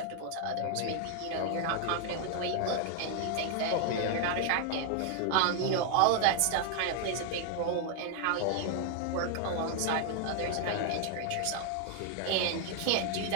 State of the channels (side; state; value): both; different; correlation 0.00